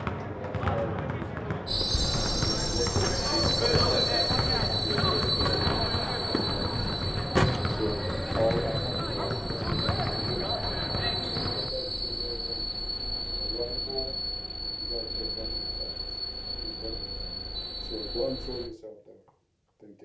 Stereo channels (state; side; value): identical; both; correlation 1.00